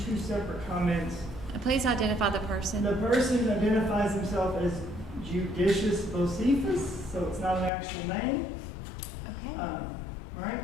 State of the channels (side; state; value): right; drops out; at 7.7 s